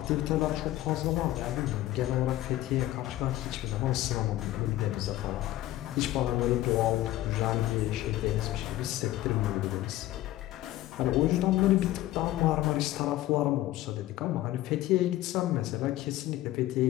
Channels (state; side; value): quieter; right; 15.3 dB